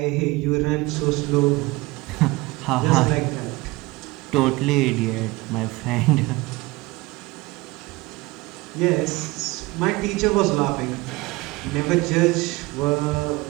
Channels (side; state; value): left; quieter; 21.9 dB